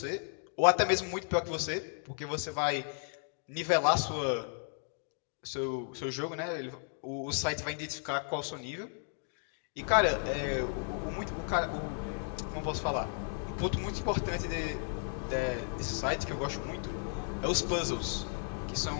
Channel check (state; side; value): silent; right; 55 dB below the other